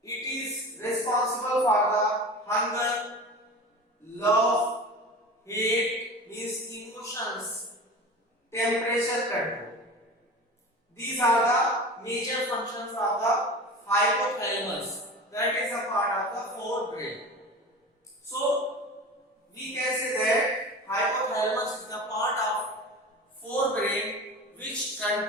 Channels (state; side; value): normal; both; correlation 0.34